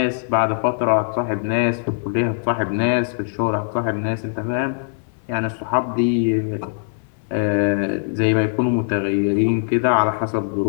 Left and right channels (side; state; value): right; silent; digital silence